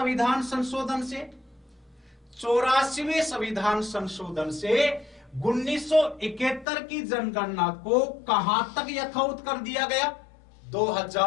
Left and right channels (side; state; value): right; drops out; at 6.7 s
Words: संशोधन से? 84वें संविधान संशोधन से 1971 की जनगणना को कहां तक यथावत कर दिया गया?